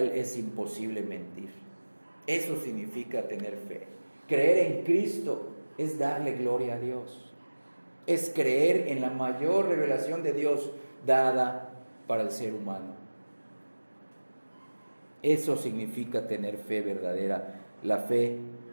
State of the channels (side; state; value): both; inverted; correlation -1.00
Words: es imposible mentir. Eso significa tener fe. Creer en Cristo es darle gloria a Dios, es creer en la mayor revelación de Dios dada para el ser humano. Eso significa tener fe verdadera, la fe